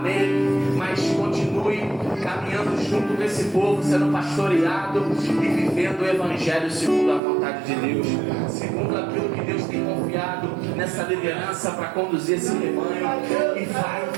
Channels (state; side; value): drops out; left; at 7.2 s